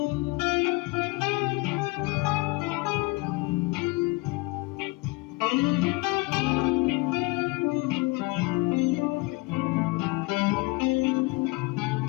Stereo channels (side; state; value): right; quieter; 24.1 dB